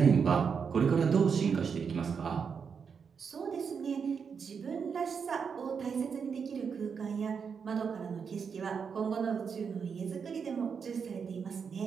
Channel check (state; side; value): quieter; left; 6.3 dB